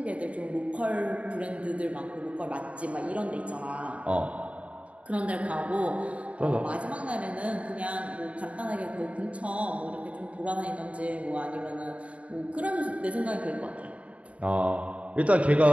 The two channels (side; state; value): left; late; 0.065 ms